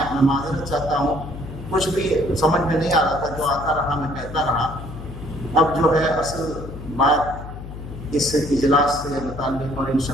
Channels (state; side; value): noise; left; hum, 11 dB below the sound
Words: میں معذرت چاہتا ہوں، کچھ بھی سمجھ میں نہیں آ رہا تھا، جو آتا رہا میں کہتا رہا. اب جو ہے اصل بات اس اجلاس سے متعلق اور ان